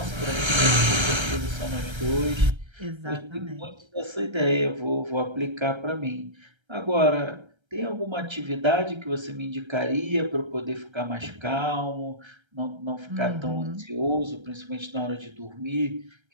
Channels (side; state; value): left; late; 1.3 ms